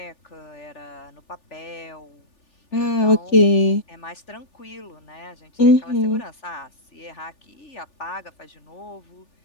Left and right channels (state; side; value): late; right; 3.4 ms